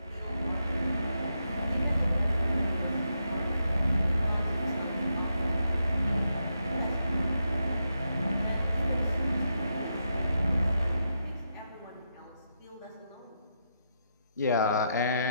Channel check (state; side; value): inverted; both; correlation -0.82